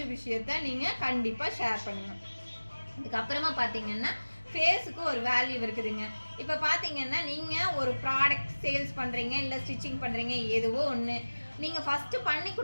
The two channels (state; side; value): inverted; both; correlation -1.00